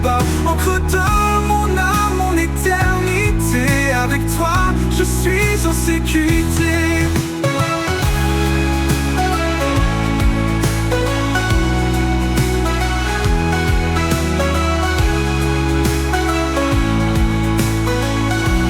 Encre de mon âme, mon éternité. Avec toi, je suis en sécurité.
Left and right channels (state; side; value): identical; both; correlation 1.00